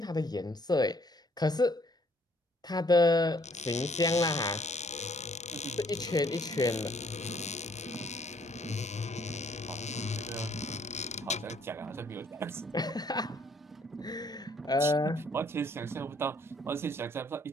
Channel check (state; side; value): normal; both; correlation 0.64